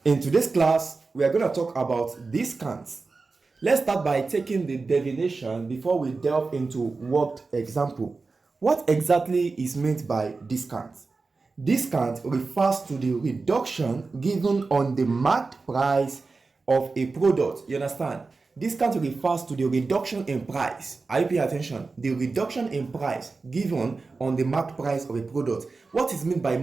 In today's class, we are going to talk about discounts. Let's start by taking the definition before we delve into worked example. What exactly is meant by discount? Discount refers to the reduction given on the marked price of a product. You understand? Discount refers to the reduction in price. Are you paying attention? The reduction in price given on the marked price of a product. What is meant by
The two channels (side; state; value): left; quieter; 4.0 dB